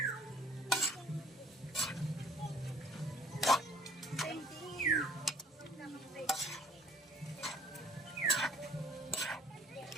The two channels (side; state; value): both; normal; correlation 0.56